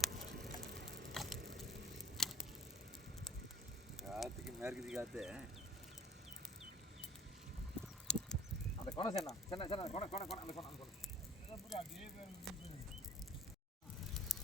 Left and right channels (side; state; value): both; normal; correlation 0.52